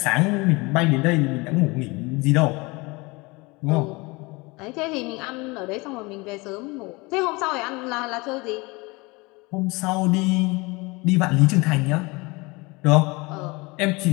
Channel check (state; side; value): quieter; right; 25.1 dB